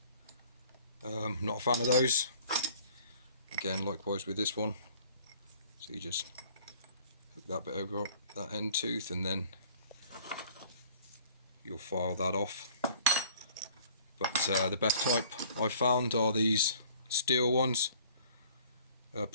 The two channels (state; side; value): inverted; both; correlation -0.54